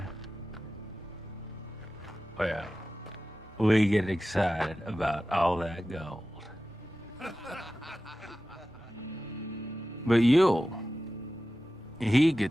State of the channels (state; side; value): normal; both; correlation 0.94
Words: well, we get excited about all that gold. But Yule, he